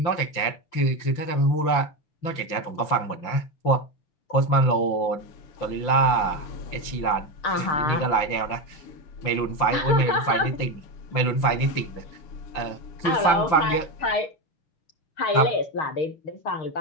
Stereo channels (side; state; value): right; late; 5.9 ms